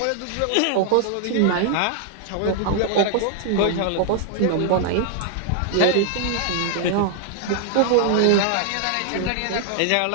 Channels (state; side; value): different; both; correlation 0.00